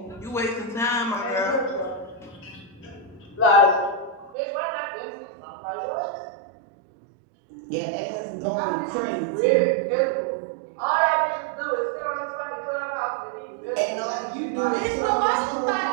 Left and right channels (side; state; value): left; drops out; at 4.4 s